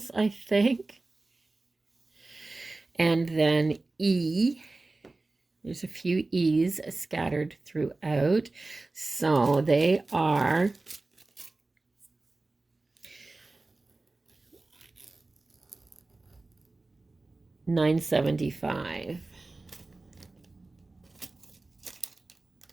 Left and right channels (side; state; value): left; quieter; 3.2 dB